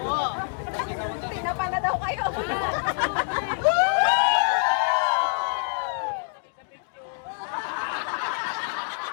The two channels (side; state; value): right; silent; digital silence